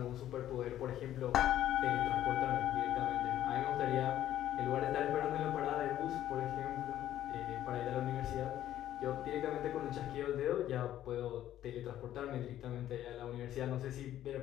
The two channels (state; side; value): quieter; right; 12.3 dB